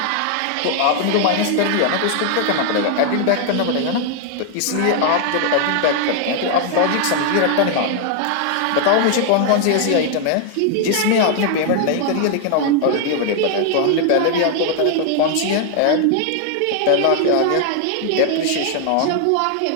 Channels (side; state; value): both; different; correlation 0.00